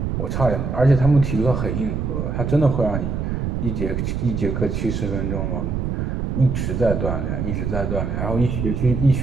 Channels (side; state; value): right; noise; rumble, 1 dB below the sound